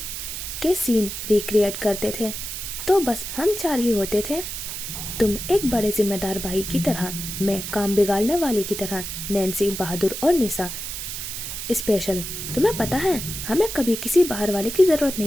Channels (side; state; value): right; noise; hiss, 6 dB below the sound